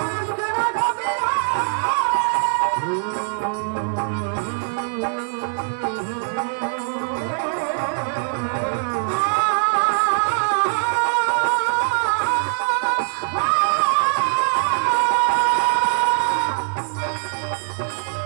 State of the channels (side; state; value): left; silent; digital silence